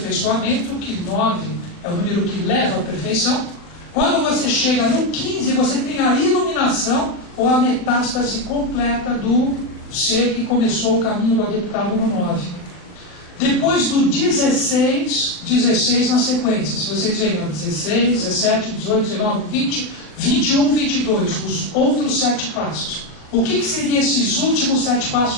que 9 é o número que leva à perfeição. Quando você chega no 15, você tem a iluminação ou a metástase completa do ser que começou o caminho do adeptado no 9. Depois do 16 na sequência, se vocês verem, 16, 17, 18, 19, 20, 21, 22, os outros 7 passos. O que seriam esses últimos 7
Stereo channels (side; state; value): right; late; 39 ms